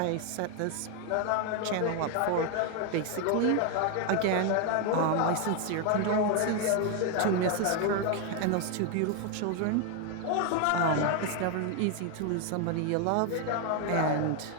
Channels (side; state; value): both; different; correlation 0.01